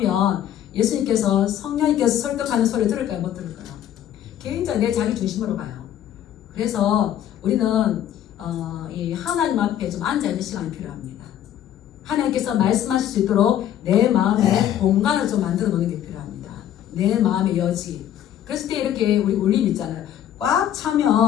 예수님께서 성령님께서 설득하는 소리를 들을까요? 못 들을까요? 굉장히 내 자기 중심으로 가요. 그래서 우리는 이 하나님 앞에 좀 앉아있는 시간이 필요합니다. 하나님께서 말씀하실 수 있도록 내 마음에 공간을 좀 만들어 놓는 게 필요합니다. 내 마음의 여지. 그랬을 때 이렇게 우리 울림 있잖아요. 꽉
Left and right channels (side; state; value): right; quieter; 10.9 dB